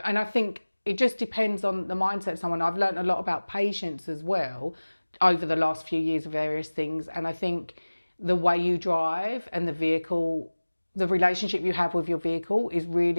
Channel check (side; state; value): both; inverted; correlation -1.00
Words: I think it just depends on the mindset of someone. I've learned a lot about patience as well over the last few years of various things. And I think the way you drive and the vehicle, the relationship you have with your vehicle is